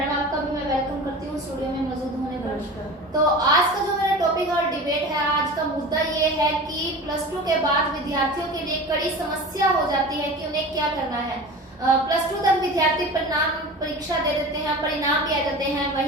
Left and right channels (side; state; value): both; normal; correlation 0.34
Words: आपका भी मैं वेलकम करती हूँ स्टूडियो में मौजूद होने का। तो आज का जो मेरा टॉपिक और डिबेट है, आज का मुद्दा ये है कि +2 के बाद विद्यार्थियों के लिए कड़ी समस्या हो जाती है कि उन्हें क्या करना है। +2 तक विद्यार्थी परीक्षा दे देते हैं, परिणाम भी आ जाते हैं।